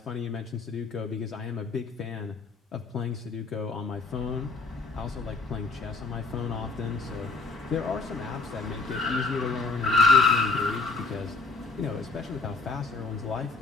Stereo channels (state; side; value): quieter; right; 3.9 dB